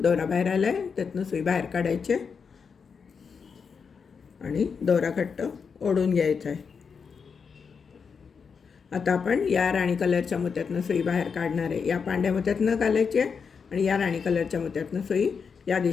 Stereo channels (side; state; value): right; quieter; 5.9 dB